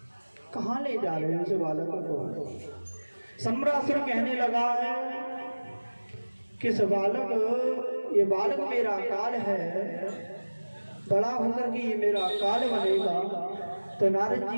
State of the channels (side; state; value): both; inverted; correlation -1.00